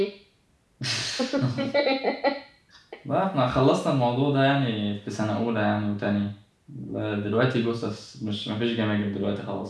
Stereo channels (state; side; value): identical; both; correlation 1.00